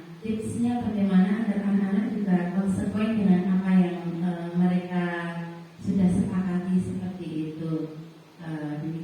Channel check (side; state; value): both; identical; correlation 1.00